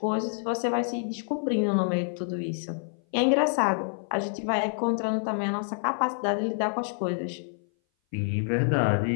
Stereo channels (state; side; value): silent; right; 57 dB below the other